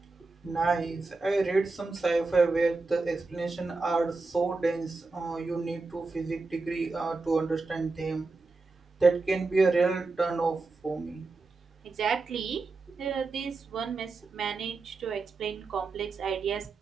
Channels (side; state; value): left; quieter; 3.7 dB